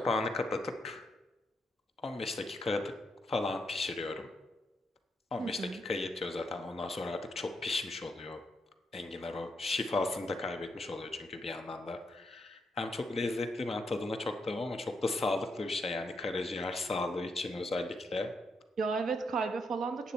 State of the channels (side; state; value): both; normal; correlation 0.79